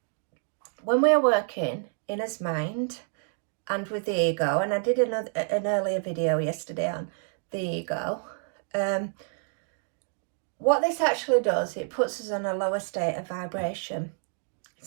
when we are working in his mind and with the ego, and I did an earlier video yesterday on the ego, what this actually does, it puts us in a lower state of vibration.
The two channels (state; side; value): silent; left; 59 dB below the other